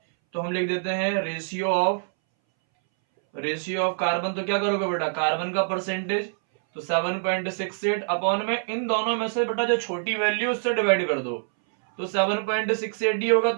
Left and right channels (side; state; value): left; silent; 60 dB below the other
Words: तो हम लिख देते हैं रेशियो ऑफ कार्बन। तो क्या करोगे बेटा, कार्बन का परसेंटेज, तो 7.68 अपॉन में इन दोनों में से बेटा जो छोटी वैल्यू उससे डिवाइड कर दो, तो 7.68 ही होगा,